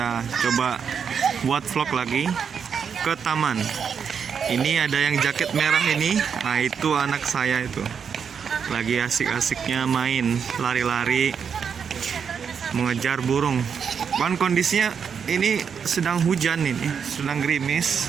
coba buat vlog lagi ke taman. Ini ada yang jaket merah ini. Nah, itu anak saya itu lagi asik-asiknya main lari-lari mengejar burung. Kan kondisinya ini sedang hujan, ini sedang gerimis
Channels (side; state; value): left; quieter; 6.8 dB